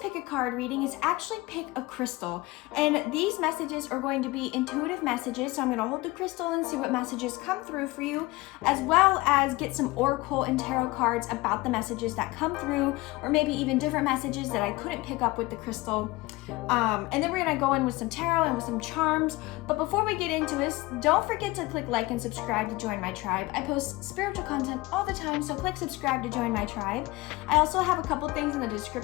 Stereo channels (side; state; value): right; quieter; 21.1 dB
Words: a card reading is actually pick a crystal, and these messages are going to be intuitive messages. So I'm going to hold the crystal and see what messages come through for you, as well as get some oracle and tarot cards about the messages that come through, or maybe even different messages that I couldn't pick up with the crystal. And then we're going to go in with some tarot and with some charms. But before we get into this, don't forget to click like and subscribe to join my tribe. I post spiritual content all the time, so click subscribe to join my tribe. I also have a couple things in the